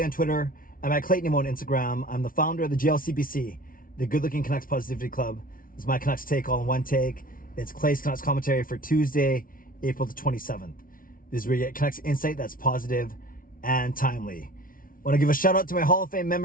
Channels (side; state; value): right; late; 0.41 ms